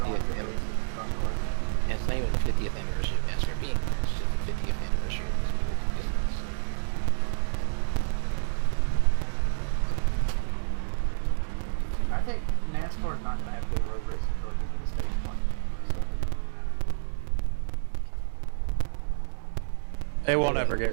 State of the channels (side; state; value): left; silent; digital silence